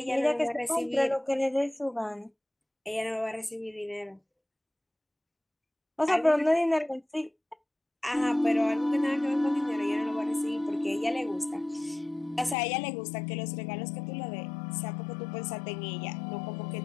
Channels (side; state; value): right; drops out; at 12.6 s